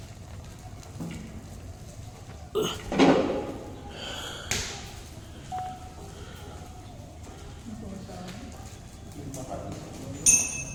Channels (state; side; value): identical; both; correlation 1.00